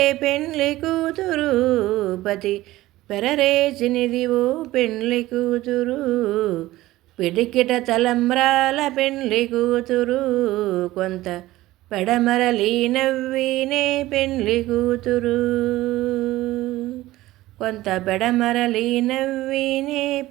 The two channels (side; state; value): left; quieter; 16.9 dB